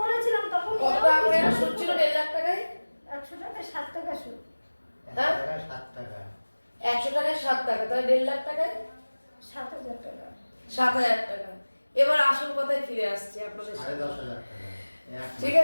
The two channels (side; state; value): both; inverted; correlation -1.00